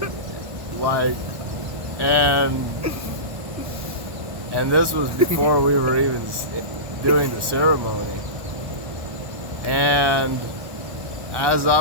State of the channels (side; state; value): left; late; 1.1 ms